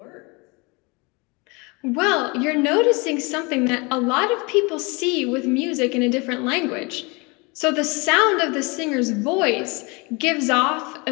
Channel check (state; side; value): quieter; right; 28.1 dB